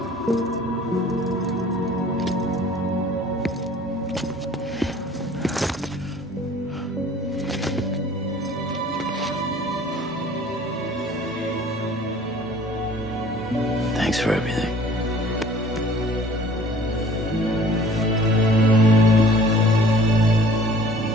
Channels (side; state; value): both; normal; correlation 0.50